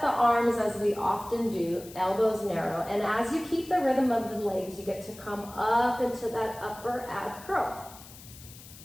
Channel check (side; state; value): left; noise; hiss, 18 dB below the sound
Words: arms as we often do, elbows narrow, and as you keep the rhythm of the legs, you get to come up into that upper ab curl.